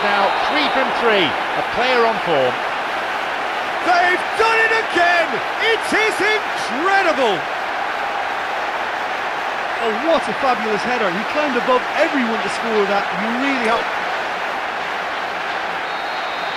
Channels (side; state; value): both; identical; correlation 1.00